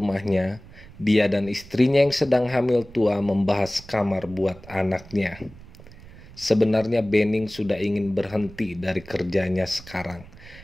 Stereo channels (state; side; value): noise; right; rumble, 20 dB below the sound